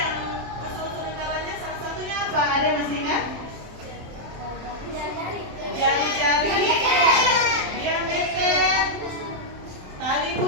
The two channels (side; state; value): left; late; 27 ms